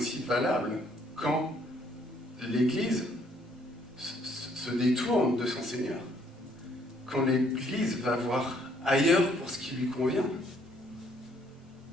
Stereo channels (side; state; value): both; normal; correlation 0.66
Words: valable quand l'Église se détourne de son Seigneur, quand l'Église va voir ailleurs pour ce qui lui convient.